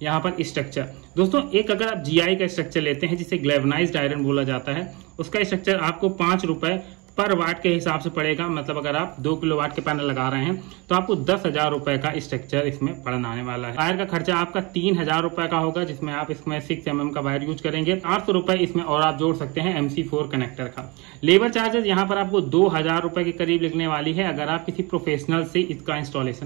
यहाँ पर स्ट्रक्चर। दोस्तों एक अगर आप GI का स्ट्रक्चर लेते हैं जिसे ग्लैवनाइज्ड आयरन बोला जाता है, उसका स्ट्रक्चर आपको 5 रुपए पर वाट के हिसाब से पड़ेगा। मतलब अगर आप 2 किलोवाट के पैनल लगा रहे हैं तो आपको 10,000 रुपए का स्ट्रक्चर इसमें पड़ने आने वाला है। वायर का खर्चा आपका 3,000 रुपए का होगा, जिसमें आप इसमें 6 mm का वायर यूज करेंगे। 800 रुपए इसमें और आप जोड़ सकते हैं MC4 कनेक्टर का। लेबर चार्जेस यहाँ पर आपको 2,000 रुपए के करीब लगने वाली है अगर आप किसी प्रोफेशनल से इसका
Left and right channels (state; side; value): quieter; left; 26.9 dB